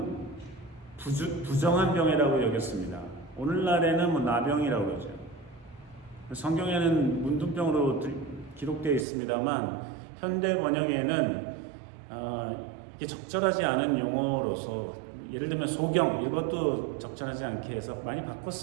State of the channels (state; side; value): drops out; left; at 9.1 s